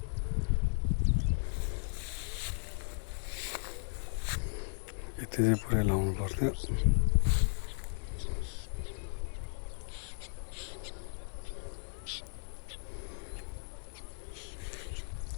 यति चाहिँ पुरै लाउनु पर्थ्यो।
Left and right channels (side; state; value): right; silent; digital silence